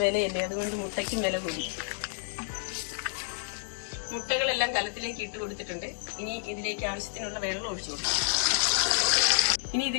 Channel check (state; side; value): silent; right; digital silence